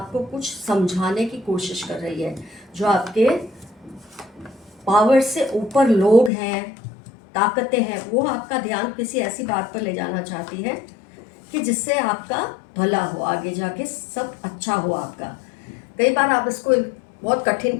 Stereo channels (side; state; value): right; drops out; at 6.3 s